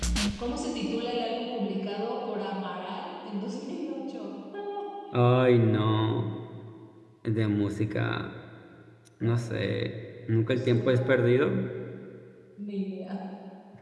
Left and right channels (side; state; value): both; identical; correlation 1.00